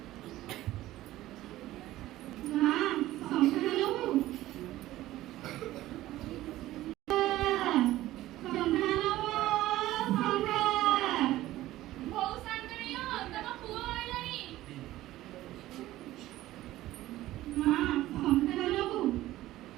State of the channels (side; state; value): left; quieter; 15.6 dB